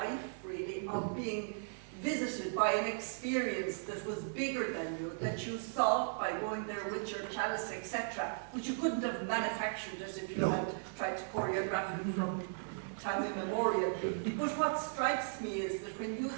really, of being visited by an experience that was bigger than you, that you saw by going there with your chalice, etc., but you couldn't have manufactured it if you had tried to choreograph it from time immemorial. But what strikes me is that when you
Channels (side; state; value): left; silent; digital silence